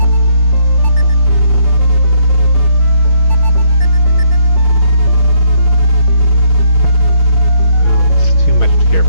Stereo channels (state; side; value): late; right; 6.2 ms